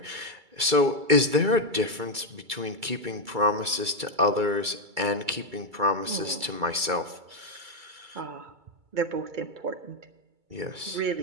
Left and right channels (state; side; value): late; left; 2.3 ms